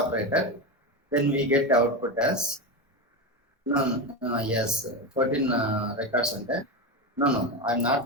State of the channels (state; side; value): normal; both; correlation 0.16